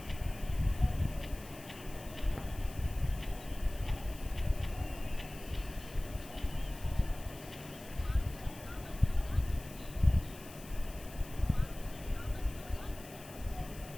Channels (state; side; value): noise; left; hiss, 17 dB below the sound